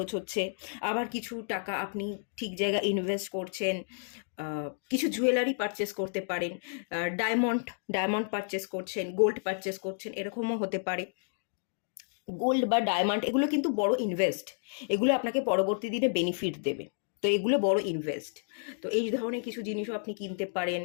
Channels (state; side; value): silent; right; digital silence